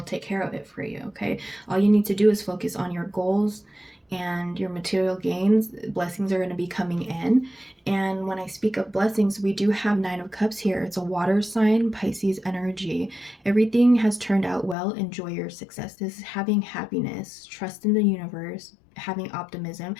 take care of it for you. Okay, all you need to do is focus on your goals and your material gains. Blessings are going to be coming in. And when I speak of blessings, we do have Nine of Cups here. It's a water sign, Pisces energy. Everything has turned out well. Enjoy your success. This is having happiness, trust in the universe, having optimism.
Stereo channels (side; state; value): right; drops out; at 14.8 s